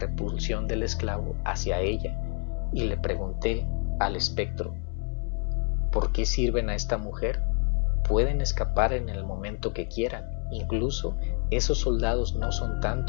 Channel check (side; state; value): right; quieter; 39.6 dB